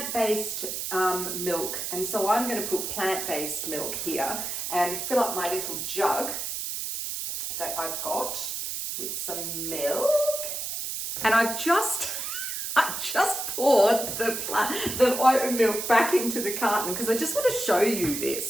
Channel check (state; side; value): noise; right; hiss, 4 dB below the sound